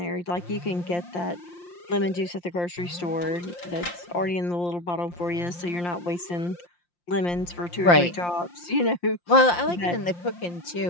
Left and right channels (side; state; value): right; late; 5.7 ms